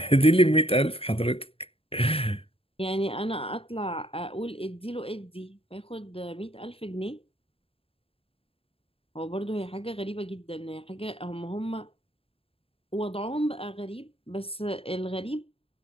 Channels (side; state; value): right; late; 0.27 ms